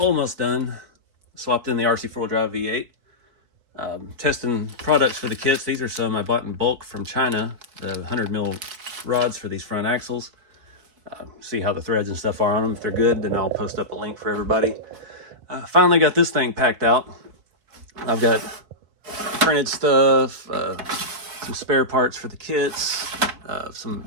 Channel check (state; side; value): late; left; 4.6 ms